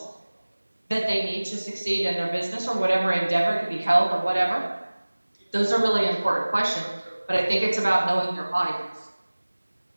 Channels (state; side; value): inverted; both; correlation -1.00